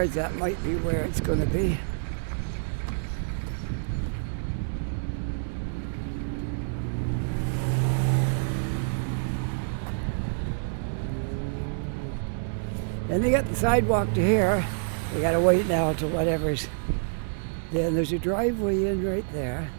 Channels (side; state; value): left; silent; digital silence